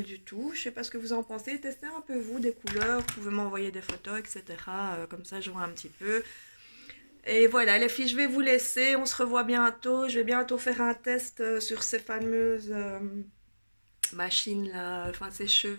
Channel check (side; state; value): both; inverted; correlation -1.00